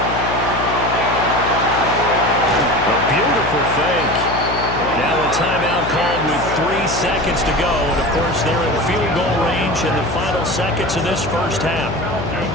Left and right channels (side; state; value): left; noise; hum, 7 dB below the sound